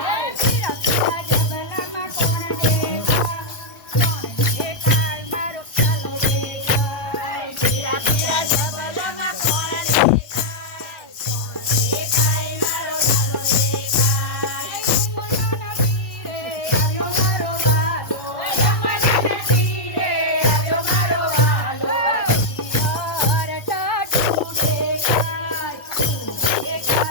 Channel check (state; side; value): late; right; 1.0 ms